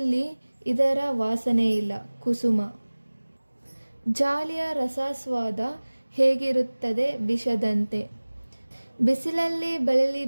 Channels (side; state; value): both; inverted; correlation -1.00